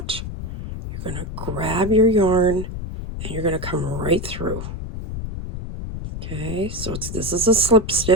You're going to grab your yarn and you're going to come right through. Okay, so this is a slip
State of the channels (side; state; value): left; noise; rumble, 7 dB below the sound